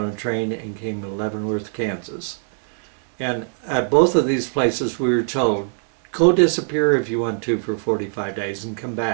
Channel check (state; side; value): silent; left; digital silence